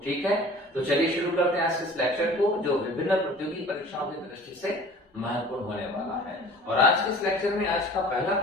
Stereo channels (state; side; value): normal; both; correlation 0.45